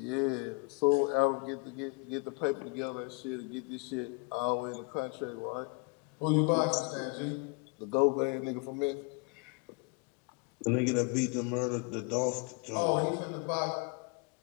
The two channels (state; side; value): quieter; right; 30.8 dB